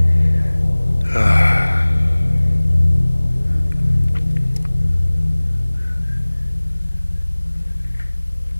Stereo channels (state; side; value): inverted; both; correlation -1.00